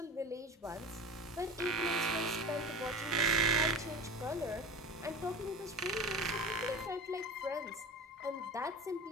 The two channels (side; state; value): both; normal; correlation 0.33